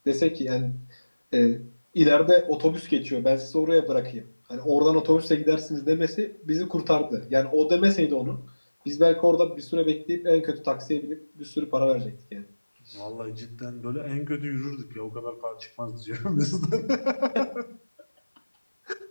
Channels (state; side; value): inverted; both; correlation -1.00